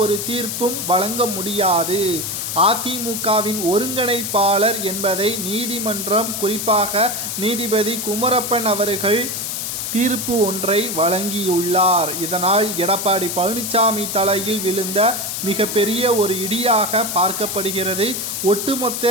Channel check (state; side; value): noise; left; hiss, 3 dB below the sound